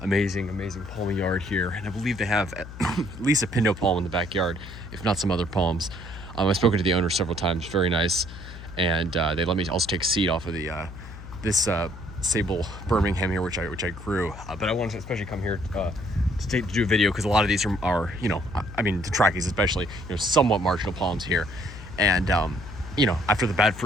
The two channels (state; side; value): noise; left; hum, 13 dB below the sound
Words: palmy yard here. And I believe they have at least a Pindo palm in the backyard, if not some other palms. I've spoken to the owner several times. Very nice, and they let me also take seed off of the this Sabal Birmingham here, which I grew. But I wanted to especially come here to do a video because a lot of these are you know, I mean the Trachys especially, you know, somewhat marginal palms here, and you know, after the bad